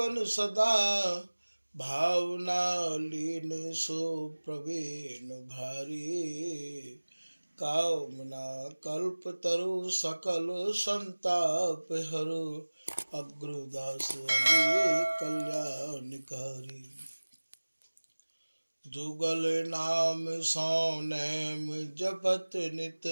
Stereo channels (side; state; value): both; inverted; correlation -1.00